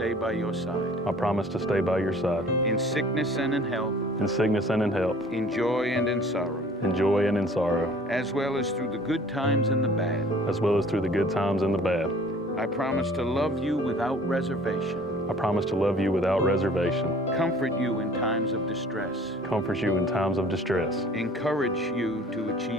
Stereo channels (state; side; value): normal; both; correlation 0.50